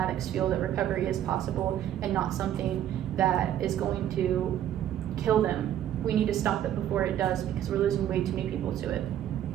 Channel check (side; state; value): left; quieter; 11.2 dB